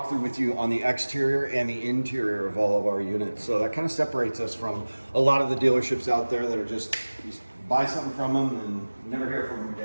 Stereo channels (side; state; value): both; inverted; correlation -1.00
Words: with you on the exterior and the interior of all of our units. So that kind of separates us from a lot of the dealerships out there that are just, you buy something from them and never hear from them